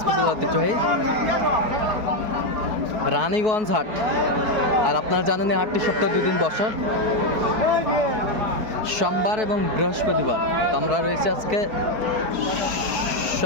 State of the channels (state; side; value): late; left; 4.6 ms